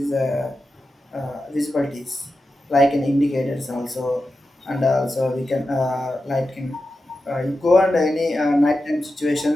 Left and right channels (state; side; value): normal; both; correlation 0.91